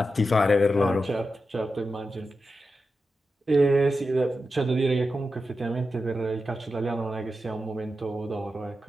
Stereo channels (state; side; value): normal; both; correlation 0.90